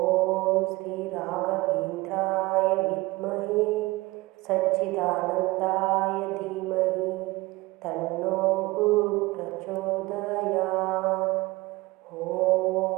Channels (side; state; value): left; quieter; 21.3 dB